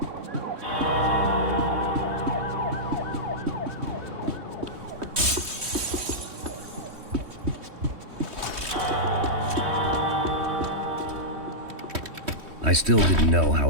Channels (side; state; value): left; late; 3.1 ms